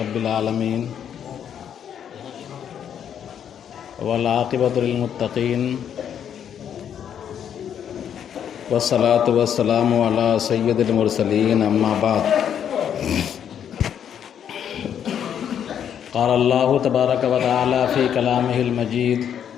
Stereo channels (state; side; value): quieter; right; 8.9 dB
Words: العالمین والعاقبۃ للمتقین والصلاة والسلام علی سید المرسلین اما بعد قال اللہ تبارک و تعالی فی کلامہ المجید